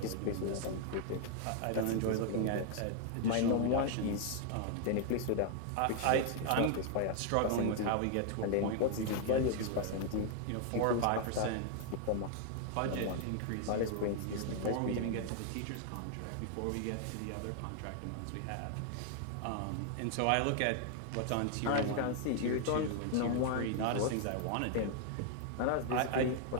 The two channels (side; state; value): both; different; correlation 0.00